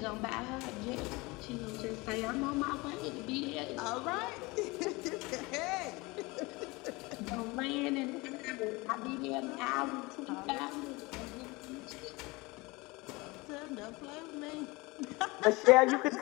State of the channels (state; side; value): quieter; right; 23.9 dB